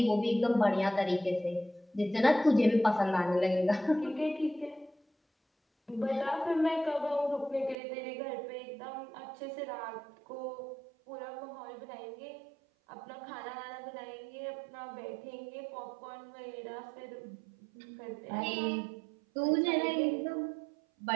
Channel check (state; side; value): drops out; left; at 7.8 s